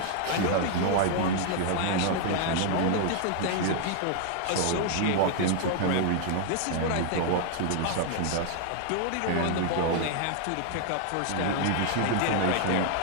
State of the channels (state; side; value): different; both; correlation 0.00